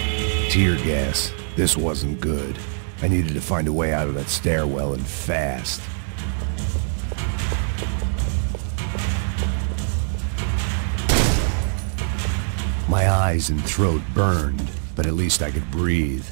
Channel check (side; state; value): left; silent; 64 dB below the other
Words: Tear gas. This wasn't good. I needed to find a way out of that stairwell and fast. My eyes and throat burned, but at least I could breathe.